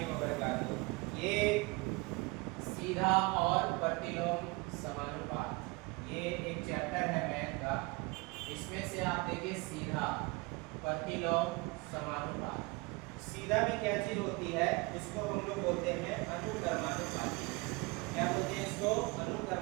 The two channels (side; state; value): left; quieter; 25.8 dB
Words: वबरकातुहू। ये सीधा और प्रतिलोम समानुपात, ये एक चैप्टर है मैथ का। इसमें से आप देखिए सीधा, प्रतिलोम, समानुपात। सीधा में क्या चीज होती है, इसको हम लोग बोलते हैं अनुक्रमानुपाती। क्या बोलते हैं इसको?